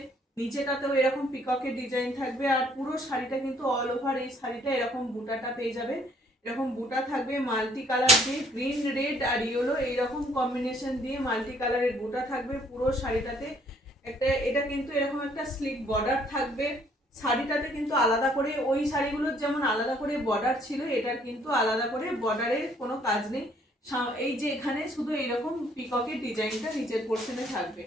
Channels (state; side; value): normal; both; correlation 0.63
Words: নিচেটাতেও এরকম পিককের ডিজাইন থাকবে। আর পুরো শাড়িটা কিন্তু অল ওভার এই শাড়িটা এরকম বুটাটা পেয়ে যাবে, এরকম বুটা থাকবে মাল্টি কালার দিয়ে, গ্রিন রেড আর ইয়েলো এইরকম কম্বিনেশন দিয়ে মাল্টি কালারের বুটা থাকবে পুরো শাড়িটাতে। একটা এটা কিন্তু এরকম একটা স্লিক বর্ডার থাকবে শাড়িটাতে, কিন্তু আলাদা করে ওই শাড়িগুলোর যেমন আলাদা করে বর্ডার ছিল, এটার কিন্তু আলাদা করে বর্ডারের কোনো কাজ নেই। এই যে এখানে শুধু এইরকম পিককের ডিজাইনটা নিচের পোর্শনে থাকবে,